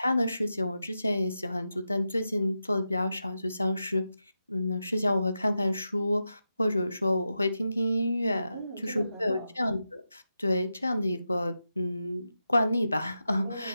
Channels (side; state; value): both; inverted; correlation -0.89